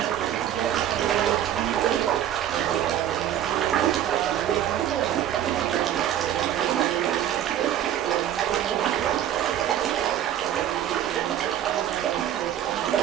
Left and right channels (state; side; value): quieter; left; 11.0 dB